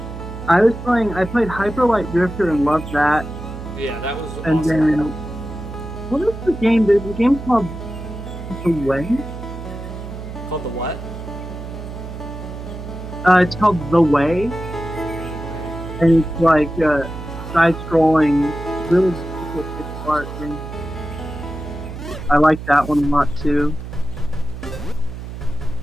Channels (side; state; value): right; noise; hum, 10 dB below the sound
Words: played Hyper Light Drifter and loved that. Yeah, that was And awesome. then what is the game? There's a game called The Way. Called the what? It's called The Way, and it's like side-scrolling, really difficult pixel art game. I like that one a lot too.